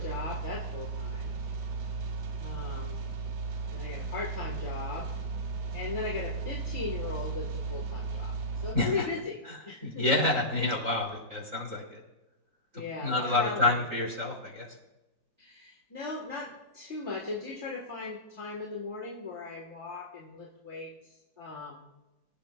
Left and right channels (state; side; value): late; left; 3.8 ms